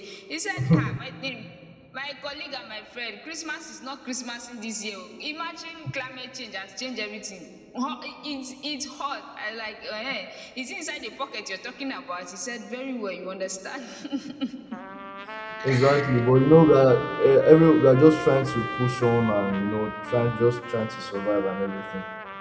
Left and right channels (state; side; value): identical; both; correlation 1.00